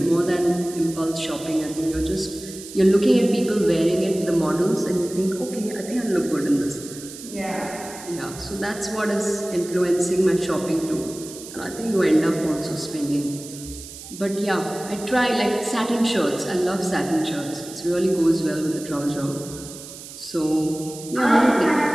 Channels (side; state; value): right; noise; hiss, 14 dB below the sound